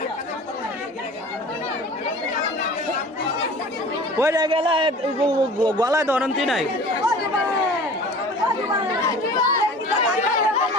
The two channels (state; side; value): normal; both; correlation 0.42